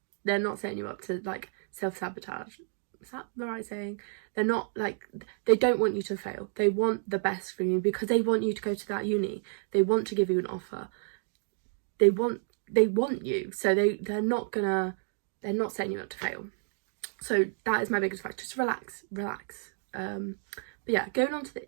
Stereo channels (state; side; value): silent; left; digital silence